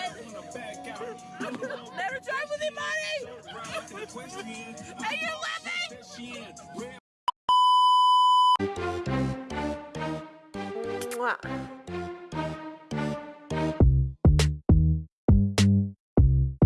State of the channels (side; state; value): both; identical; correlation 1.00